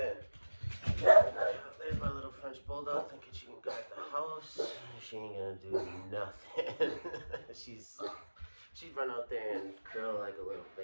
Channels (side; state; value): both; inverted; correlation -1.00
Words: There's my little French bulldog thinking she can guard the house. She ain't gonna do nothing. She'd run out there and curl like a little